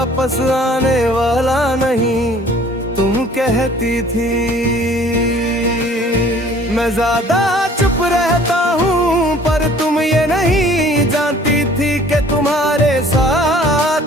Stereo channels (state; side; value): normal; both; correlation 0.53